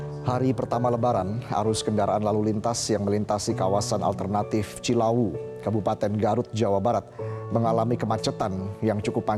Hari pertama Lebaran, arus kendaraan lalu lintas yang melintasi kawasan alternatif Cilawu, Kabupaten Garut, Jawa Barat, mengalami kemacetan yang cukup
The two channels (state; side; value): identical; both; correlation 1.00